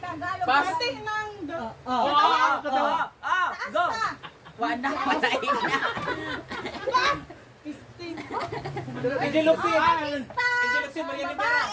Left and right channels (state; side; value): identical; both; correlation 1.00